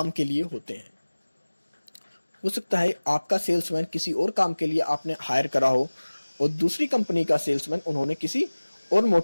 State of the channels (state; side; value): inverted; both; correlation -1.00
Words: के लिए होते हैं। हो सकता है आपका सेल्समैन किसी और काम के लिए आपने हायर करा हो और दूसरी कंपनी का सेल्समैन उन्होंने किसी और